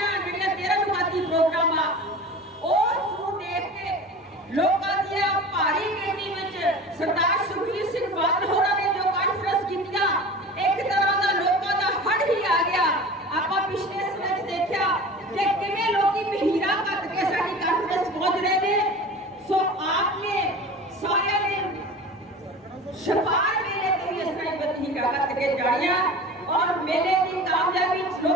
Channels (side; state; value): both; normal; correlation 0.36